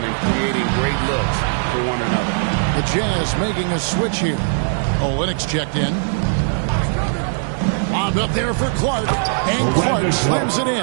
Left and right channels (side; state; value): left; silent; digital silence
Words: and creating great looks for one another. The Jazz making a switch here. Olynyk checked in. Bombed up there for Clark. And Clark slams it